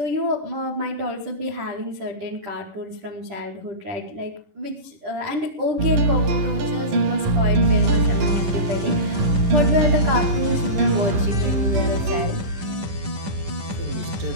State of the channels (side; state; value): left; late; 10 ms